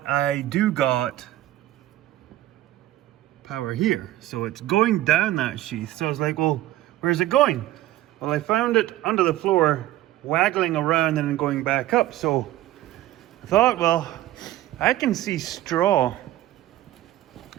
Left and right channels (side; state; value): left; quieter; 14.8 dB